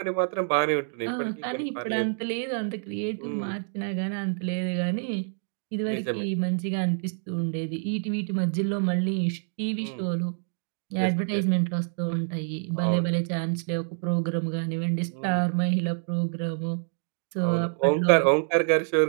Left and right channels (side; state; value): left; silent; 60 dB below the other